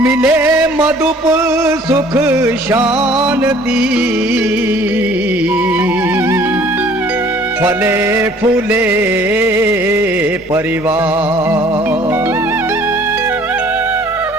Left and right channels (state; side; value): normal; both; correlation 0.55